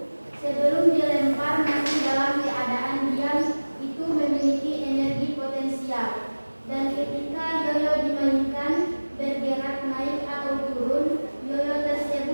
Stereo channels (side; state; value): both; inverted; correlation -1.00